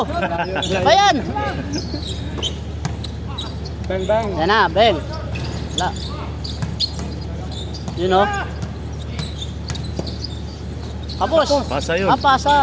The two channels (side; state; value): both; identical; correlation 1.00